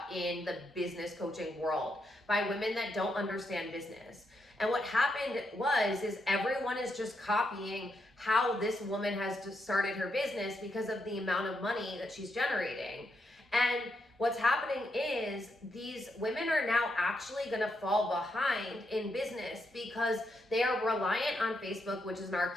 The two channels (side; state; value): both; normal; correlation 0.81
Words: in the business coaching world by women that don't understand business. And what happened is everyone is just copying how this woman has just started her business because of the amount of money that she's generating. And what's happening is these women are now actually going to fall behind in business because they are reliant on Facebook, which is an